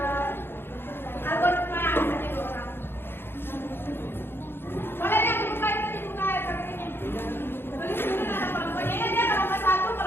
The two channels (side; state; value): right; late; 0.11 ms